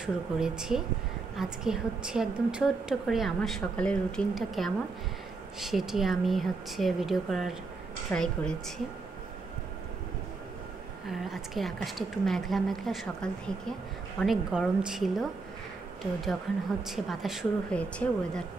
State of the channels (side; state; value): left; quieter; 4.0 dB